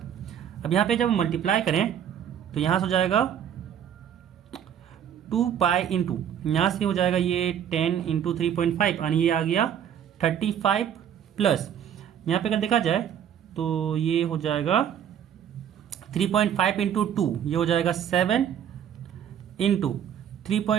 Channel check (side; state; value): left; quieter; 9.4 dB